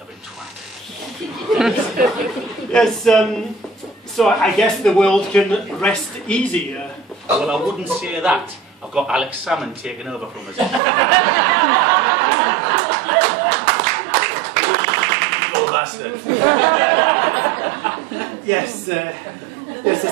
twat. Yes, so I guess the world can rest easy. Well, I wouldn't say that. I've got Alex Salmon taking over from us. Evil bastard. Yes, yes,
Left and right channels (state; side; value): drops out; left; at 10.8 s